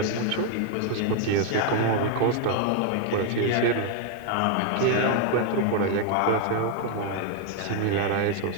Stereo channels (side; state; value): both; different; correlation 0.00